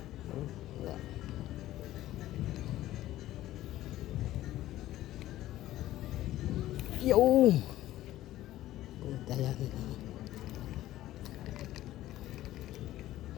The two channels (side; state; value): right; quieter; 14.7 dB